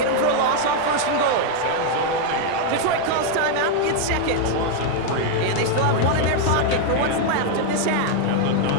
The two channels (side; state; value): both; different; correlation 0.00